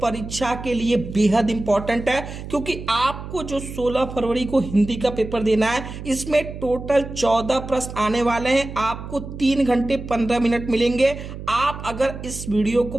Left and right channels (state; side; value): noise; right; hum, 10 dB below the sound